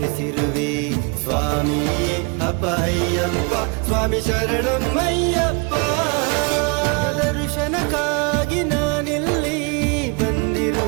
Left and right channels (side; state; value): left; quieter; 31.4 dB